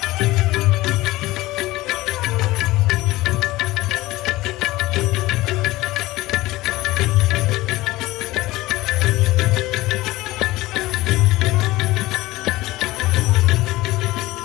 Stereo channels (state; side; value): quieter; right; 18.6 dB